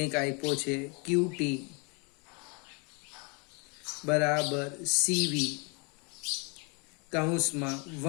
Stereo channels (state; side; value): quieter; right; 32.8 dB